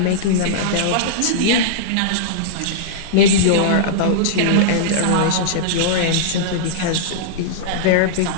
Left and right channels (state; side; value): different; both; correlation -0.03